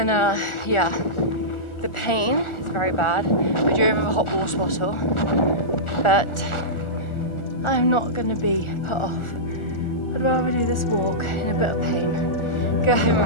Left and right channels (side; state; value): right; late; 1.4 ms